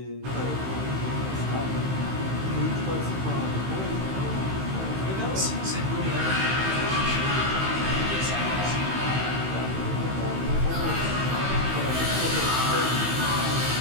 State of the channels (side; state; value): left; late; 15 ms